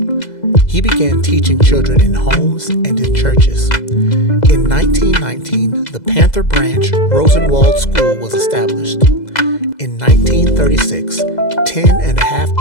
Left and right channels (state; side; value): late; right; 2.0 ms